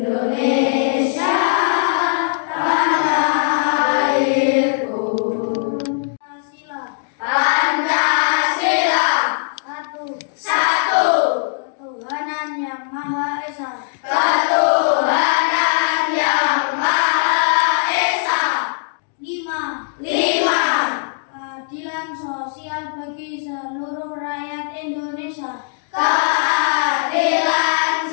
tanah airku. Pancasila. Satu. Ketuhanan yang Maha Esa. Ketuhanan yang Maha Esa. 5. Keadilan sosial bagi seluruh rakyat Indonesia. Keadilan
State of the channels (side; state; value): right; silent; digital silence